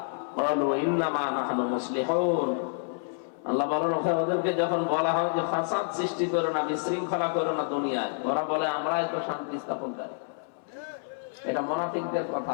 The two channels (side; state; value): right; silent; 59 dB below the other